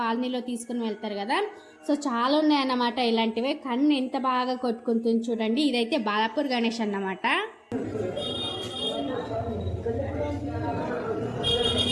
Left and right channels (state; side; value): identical; both; correlation 1.00